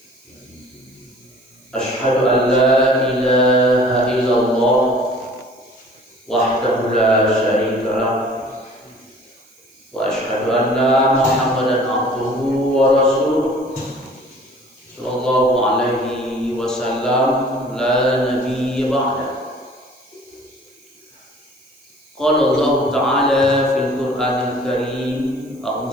Asyhadu an la ilaha illallah wahdahu la syarika lah wa asyhadu anna Muhammadan abduhu wa rasuluh sallallahu alaihi wasallam la nabiyya ba'da. Qala Allah ta'ala fil Qur'anil Karim,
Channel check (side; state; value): right; noise; hiss, 30 dB below the sound